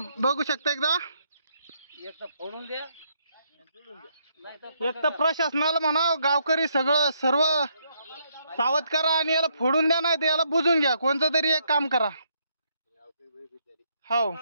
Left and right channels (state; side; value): inverted; both; correlation -0.73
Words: शकता एकदा. एक तर प्रशासनाला म्हणा गावकरी सर्व सावध करा आणि याला फोडून द्या, नाही तर याला बुजून घ्या. कोणतं तरी एक काम करा. हो,